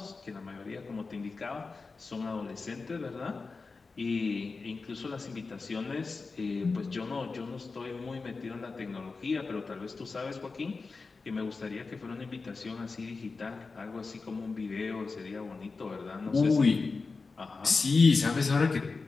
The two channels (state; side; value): quieter; right; 4.2 dB